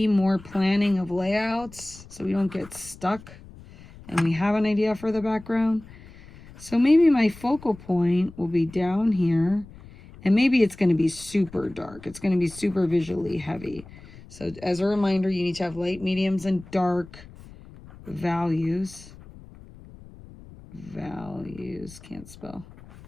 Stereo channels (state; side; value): noise; left; rumble, 19 dB below the sound